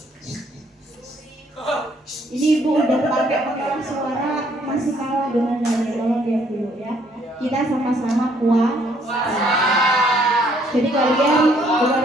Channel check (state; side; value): normal; both; correlation 0.66